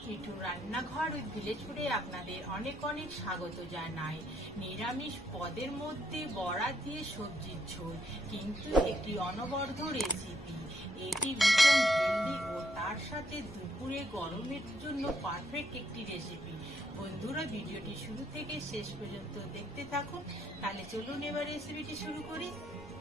মিঠুর রান্নাঘর উইথ ভিলেজ ফুডে আপনাদের অনেক অনেক স্বাগত জানাই। নিরামিষ পদের মধ্যে বড়া দিয়ে সবজির ঝোল, কিন্তু একটি অনবদ্য রেসিপি। এটি ভীষণ হেলদি ও তার সাথে দুপুরে গরমের জন্য পারফেক্ট একটি রেসিপি। বন্ধুরা, ভিডিওটি শুরু থেকে শেষ পর্যন্ত দেখতে থাকুন। তাহলে চলুন এবার রেসিপিটি শুরু করি।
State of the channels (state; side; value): normal; both; correlation 0.73